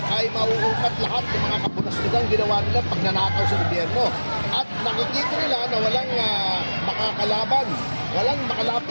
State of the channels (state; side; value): inverted; both; correlation -1.00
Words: ay mauungkat lahat ng mga kapunastugang ginawa nila pagnanakaw sa gobyerno. At nakikita nila na walang makakalaban, walang